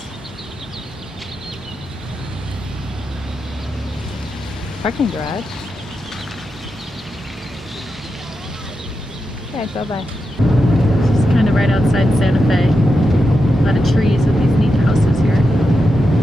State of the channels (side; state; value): both; normal; correlation 0.88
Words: Parking garage. Okay, bye-bye. This is kind of right outside Santa Fe. A lot of trees with these neat houses here.